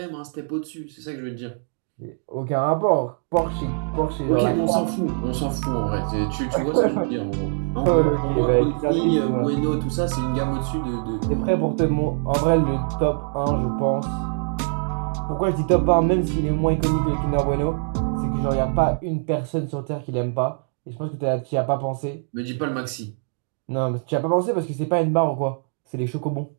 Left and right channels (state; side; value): silent; left; digital silence